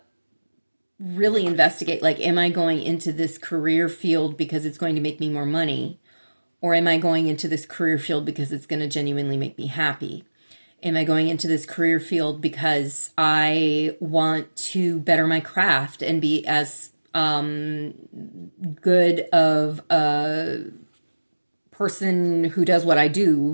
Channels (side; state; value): both; inverted; correlation -1.00